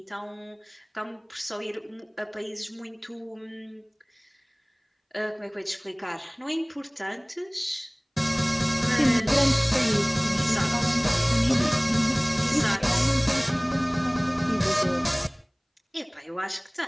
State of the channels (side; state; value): both; identical; correlation 1.00